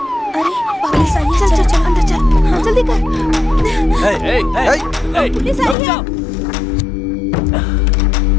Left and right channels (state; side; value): drops out; right; at 5.8 s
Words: अरे पुलिस आई है, चल चल चल अंदर चल, हाँ, जल्दी कर। पुलिस आई है।